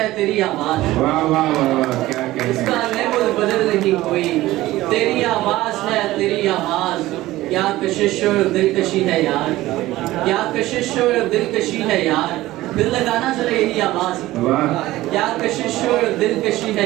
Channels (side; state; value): left; quieter; 16.8 dB